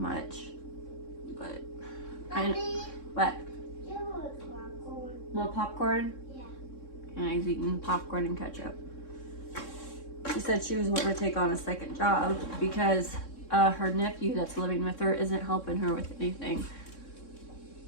but what? More popcorn? Yeah. And he's eating popcorn and ketchup. She said she was wanting to take on a second job because her nephew that's living with her isn't helping her with anything.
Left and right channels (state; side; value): late; right; 3.6 ms